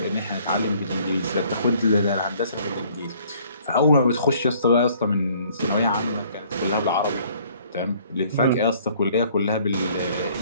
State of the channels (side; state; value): both; inverted; correlation -0.59